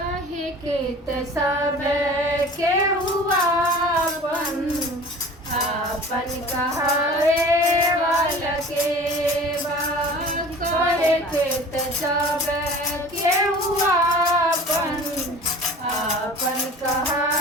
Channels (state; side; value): normal; both; correlation 0.42